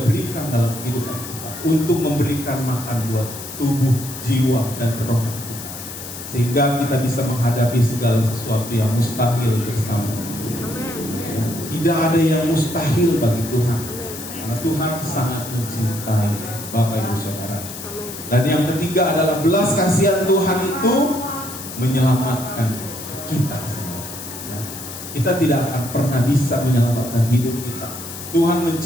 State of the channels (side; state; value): left; noise; hiss, 11 dB below the sound